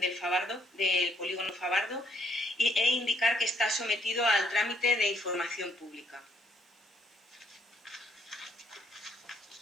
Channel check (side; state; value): both; normal; correlation 0.69